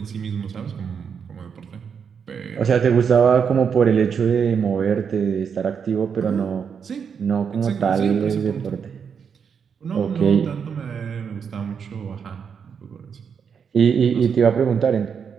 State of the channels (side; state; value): left; quieter; 6.8 dB